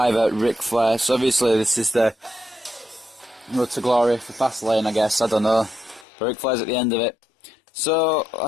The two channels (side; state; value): right; drops out; at 6.1 s